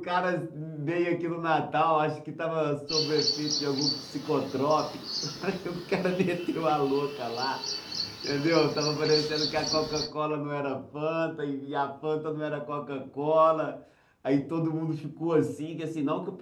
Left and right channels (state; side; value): identical; both; correlation 1.00